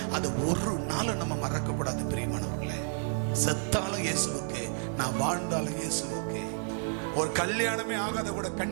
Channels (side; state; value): left; silent; 57 dB below the other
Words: அதை ஒரு நாள் நம்ம மறக்க கூடாது பிரியமானவர்களே. செத்தாலும் இயேசுவுக்கு, நான் வாழ்ந்தாலும் இயேசுவுக்கு. ஒரு கல்யாணமே ஆகாத கூட